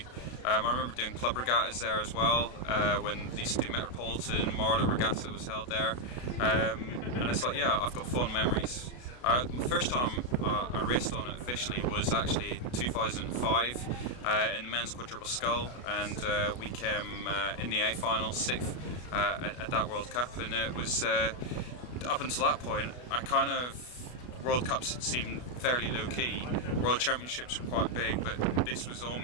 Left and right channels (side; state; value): right; late; 32 ms